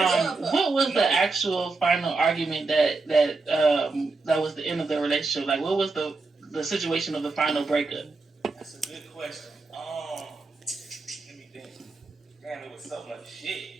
What was the actual final argument that was the end of the relationship? Like, what was the situation of the final breakup? That's a good question. Let me think. Damn, it was so much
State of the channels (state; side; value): quieter; left; 3.8 dB